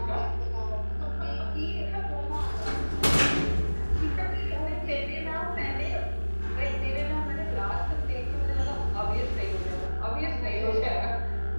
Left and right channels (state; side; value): inverted; both; correlation -1.00